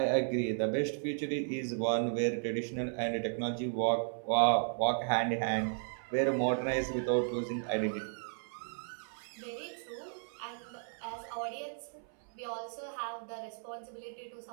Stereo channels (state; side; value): silent; left; 55 dB below the other